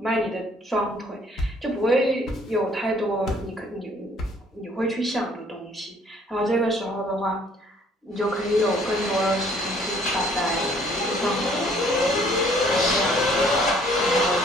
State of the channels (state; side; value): normal; both; correlation 0.60